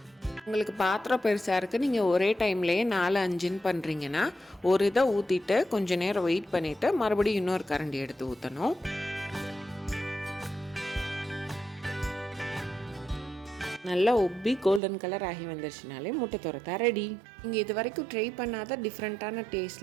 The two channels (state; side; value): drops out; left; at 14.8 s